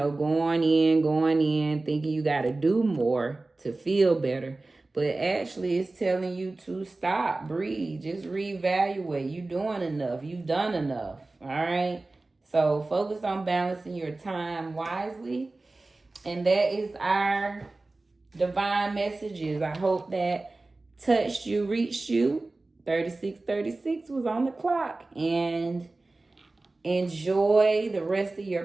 thinking you got to do more to feel better. But actually it's telling you to stop, breathe, just reevaluate. You doing enough. You've done enough. All right. So focus on balancing your time wisely. And that is our divine messages. I hope that touched you, reached you. 3636 was on the clock. And enjoy the rest of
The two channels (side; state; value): left; quieter; 3.2 dB